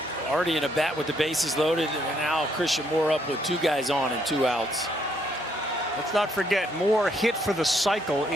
already in a bat with the bases loaded, and now Christian Moore up with 2 guys on and 2 outs. Let's not forget, Moore hit for the cycle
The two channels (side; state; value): both; normal; correlation 0.71